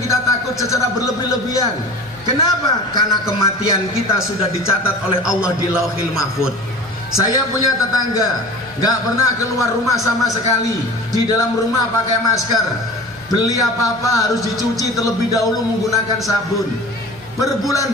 takut secara berlebih-lebihan. Kenapa? Karena kematian kita sudah dicatat oleh Allah di Lauhil Mahfuz. Saya punya tetangga, gak pernah keluar rumah sama sekali. Di dalam rumah pakai masker. Beli apa-apa harus dicuci terlebih dahulu menggunakan sabun.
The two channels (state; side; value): noise; right; hum, 27 dB below the sound